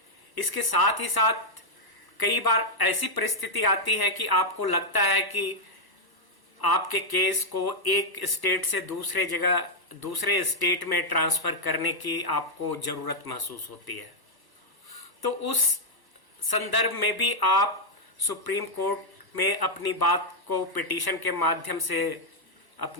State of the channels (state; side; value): late; right; 1.1 ms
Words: इसके साथ ही साथ कई बार ऐसी परिस्थिति आती है कि आपको लगता है कि आपके केस को एक स्टेट से दूसरे स्टेट में ट्रांसफर करने की आपको जरूरत महसूस होती है। तो उस संदर्भ में भी आप सुप्रीम कोर्ट में अपनी बात को पिटीशन के माध्यम से